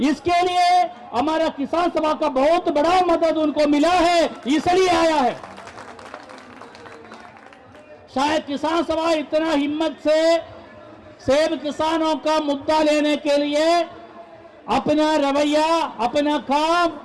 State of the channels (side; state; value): both; identical; correlation 1.00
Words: इसके लिए हमारा किसान सभा का बहुत बड़ा मदद उनको मिला है, इसलिए आया है। शायद किसान सभा इतना हिम्मत से सेब किसानों का मुद्दा लेने के लिए अपना रवैया, अपना